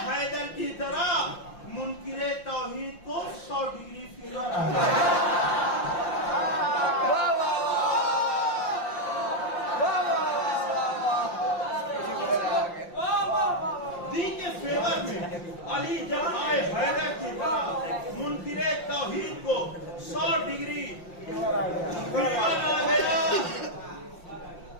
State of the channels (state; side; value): late; right; 5.7 ms